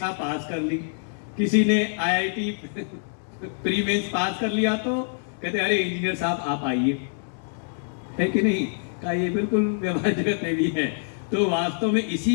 पास कर ली। किसी ने आईआईटी प्री मेंस पास कर लिया तो कहते अरे इंजीनियर साहब आप आइए, है कि नहीं? का ये बिल्कुल व्यवहार जगत में भी है। तो वास्तव में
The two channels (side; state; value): right; silent; digital silence